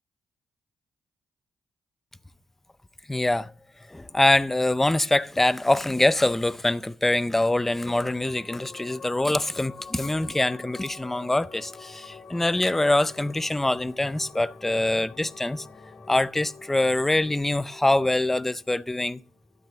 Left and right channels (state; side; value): normal; both; correlation 0.98